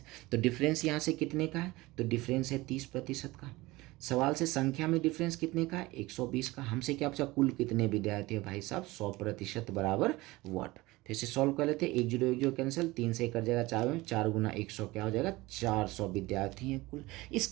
तो डिफरेंस यहाँ से कितने का है? तो डिफरेंस है 30% का। सवाल से संख्या में डिफरेंस कितने का है? 120 का। हमसे क्या पूछा? कुल कितने विद्यार्थी है? भाई साहब 100% बराबर वाट। फिर से सॉल्व कर लेते हैं। 10 कैंसिल, 3 से कर जाएगा 4 में, 4 गुना 100 क्या हो जाएगा? 400 विद्यार्थी हैं कुल। इस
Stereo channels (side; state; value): left; quieter; 20.4 dB